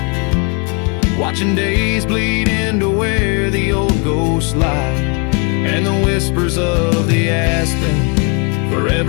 watching days bleed into where the old ghosts lie. And the whispers of the aspen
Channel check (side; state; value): right; quieter; 33.2 dB